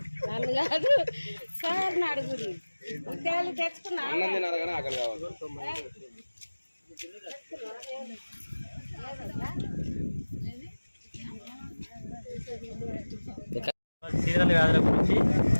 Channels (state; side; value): inverted; both; correlation -1.00